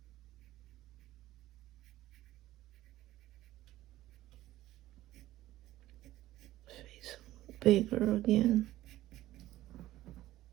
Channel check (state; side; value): quieter; left; 15.3 dB